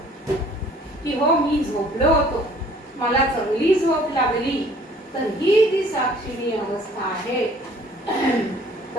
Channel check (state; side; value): normal; both; correlation 0.55